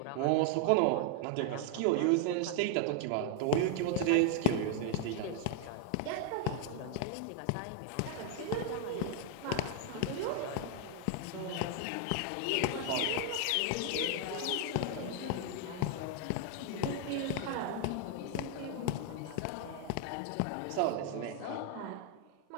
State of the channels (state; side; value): different; both; correlation 0.00